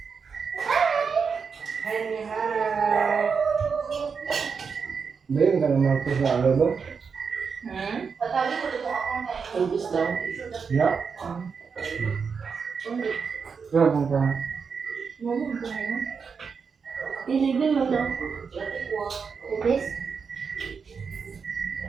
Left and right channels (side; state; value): left; quieter; 5.8 dB